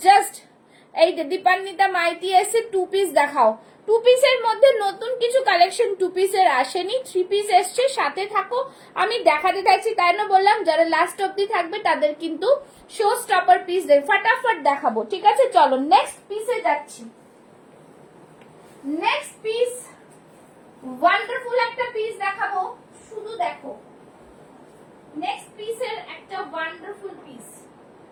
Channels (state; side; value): identical; both; correlation 1.00